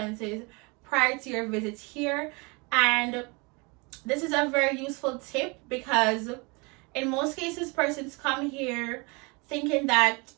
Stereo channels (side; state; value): left; quieter; 29.0 dB